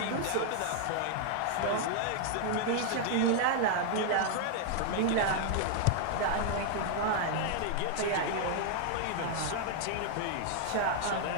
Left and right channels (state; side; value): different; both; correlation 0.00